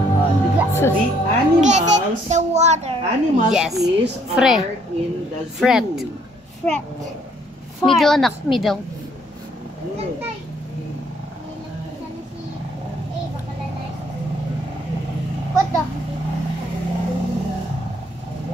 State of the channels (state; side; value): normal; both; correlation 0.65